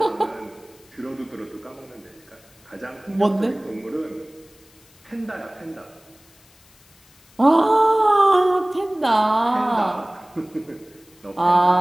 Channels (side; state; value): left; noise; hiss, 29 dB below the sound